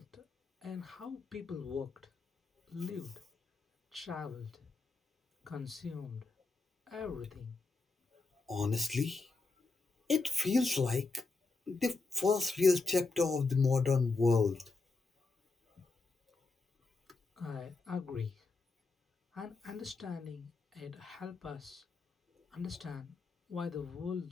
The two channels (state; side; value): quieter; right; 3.9 dB